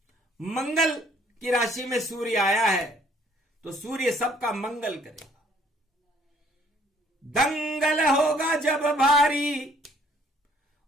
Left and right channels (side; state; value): both; normal; correlation 0.61